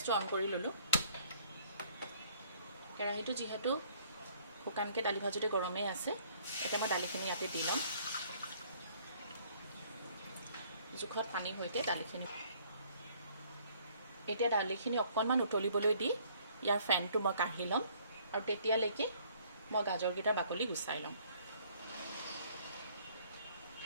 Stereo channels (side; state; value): both; inverted; correlation -0.60